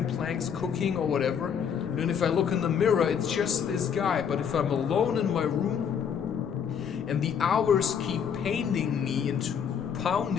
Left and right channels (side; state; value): right; quieter; 7.5 dB